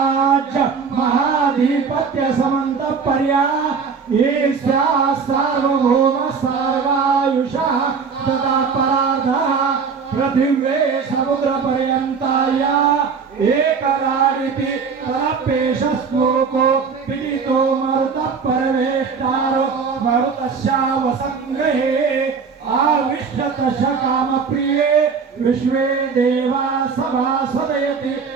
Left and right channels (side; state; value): left; quieter; 5.6 dB